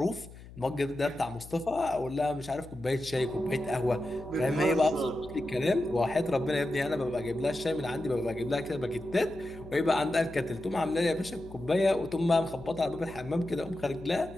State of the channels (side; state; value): left; noise; hum, 17 dB below the sound